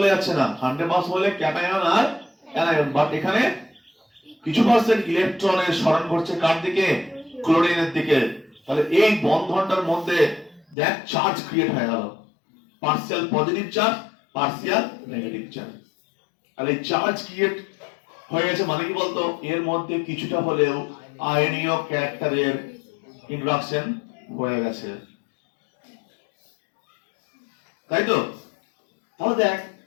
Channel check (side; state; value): right; drops out; at 10.8 s